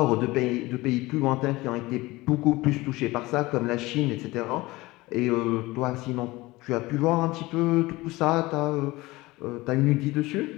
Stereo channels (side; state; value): right; quieter; 20.5 dB